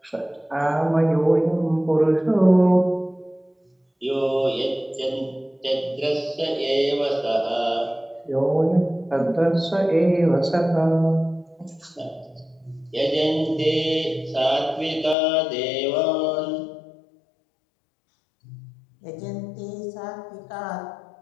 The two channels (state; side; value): drops out; right; at 15.2 s